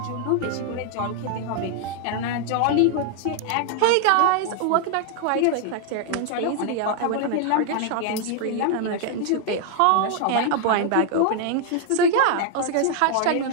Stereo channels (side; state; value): both; different; correlation 0.00